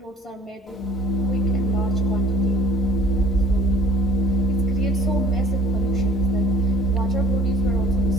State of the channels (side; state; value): both; normal; correlation 0.52